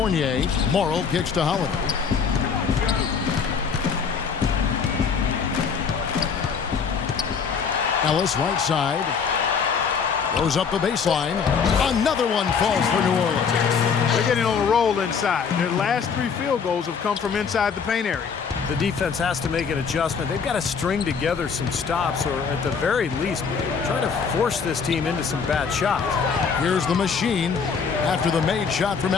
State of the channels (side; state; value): right; quieter; 6.1 dB